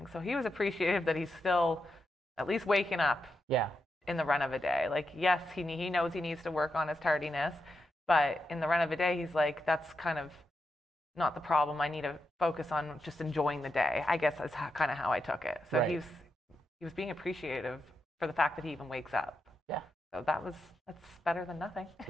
So he was appreciative that he's still at least waking up Yeah. in the run of a day. Like, yes, he knows he needs to work on his tardiness, but in the run of a day, he's like, that's kind of not the problem. I need to focus on just enjoying the day, I guess is kind of how I took it. So Right. he was being appreciative for the fact that he even wakes up. Yeah. So that's better than nothing.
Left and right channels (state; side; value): normal; both; correlation 0.86